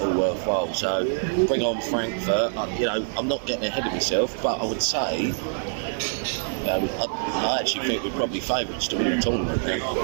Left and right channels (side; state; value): left; silent; 62 dB below the other